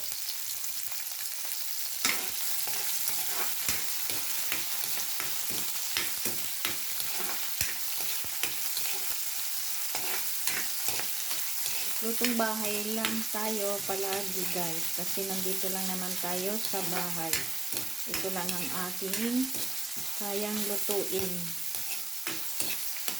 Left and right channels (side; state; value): left; quieter; 3.2 dB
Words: Lutong bahay lang tayo palagi guys, kasi nandito lang naman tayo sa bahay. Ito lang ang ating kayang lutuin.